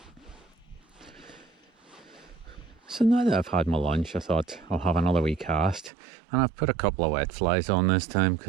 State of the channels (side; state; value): left; drops out; at 5.9 s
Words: So now that I've had my lunch, I thought I'll have another wee cast, and I've put a couple of wet flies on this time,